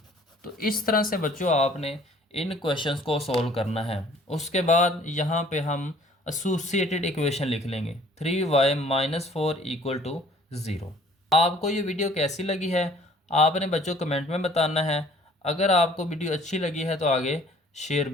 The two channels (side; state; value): both; normal; correlation 0.55